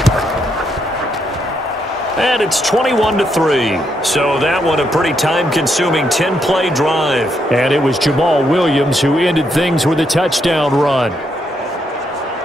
And it's 21-3. So that one a pretty time-consuming 10-play drive. And it was Jamal Williams who ended things with a touchdown run.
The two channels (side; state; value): both; normal; correlation 0.77